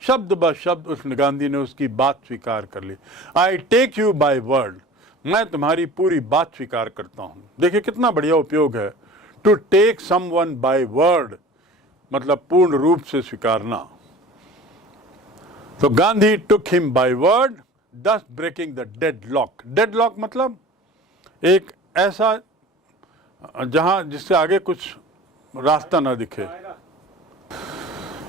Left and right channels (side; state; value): both; normal; correlation 0.41